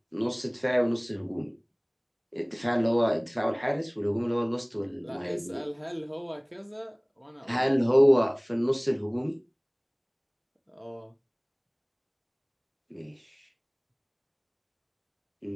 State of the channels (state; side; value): identical; both; correlation 1.00